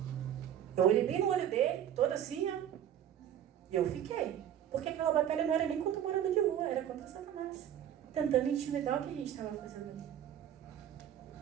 Eu olhei bem no olho dele, todo assim, ó. E eu fiquei. Porque aquela batalha não era nem contra o morador de rua, era contra Satanás. Tentando intimidar o que a gente estava fazendo ali.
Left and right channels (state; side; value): quieter; left; 10.3 dB